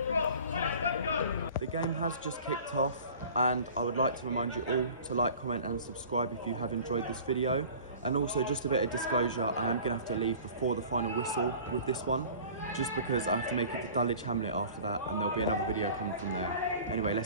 game has just kicked off, and I would like to remind you all to like, comment and subscribe if you have enjoyed this video. And also, just a bit of disclosure, I am going to have to leave before the final whistle with this one, just because I have to make it to Dulwich Hamlet after that, and there'll be another video coming from there. Anyway,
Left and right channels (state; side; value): inverted; both; correlation -0.43